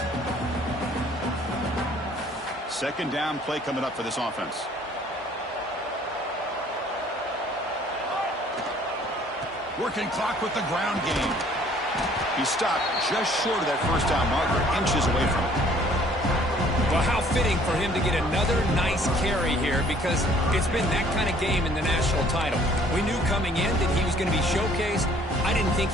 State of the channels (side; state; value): both; normal; correlation 0.57